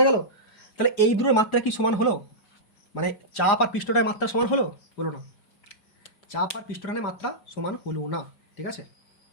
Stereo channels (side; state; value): right; late; 5.2 ms